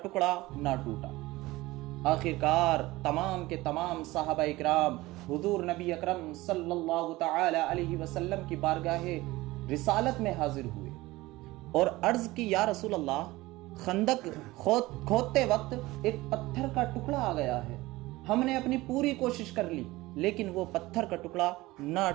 نہ ٹوٹا۔ آخرکار تمام کے تمام صحابہ اکرام حضور نبی اکرم صلی اللہ تعالی علیہ وسلم کی بارگاہ رسالت میں حاضر ہوئے اور عرض کی، یا رسول اللہ، خندق کھودتے وقت ایک پتھر کا ٹکڑا آ گیا ہے، ہم نے اپنی پوری کوشش کر لی لیکن وہ پتھر کا ٹکڑا نہ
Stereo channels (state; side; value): quieter; left; 19.4 dB